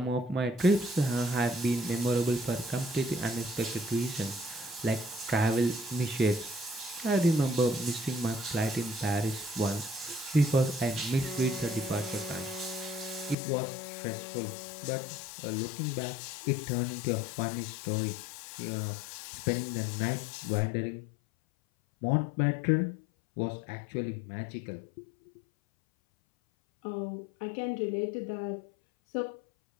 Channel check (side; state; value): right; drops out; at 13.4 s